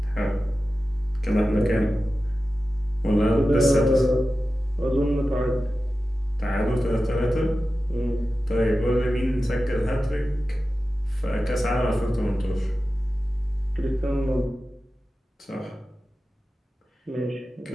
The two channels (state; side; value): normal; both; correlation 0.93